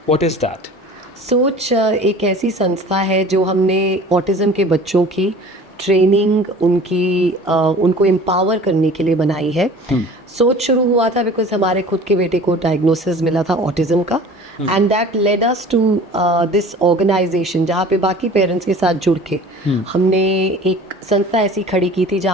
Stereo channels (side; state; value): both; normal; correlation 0.44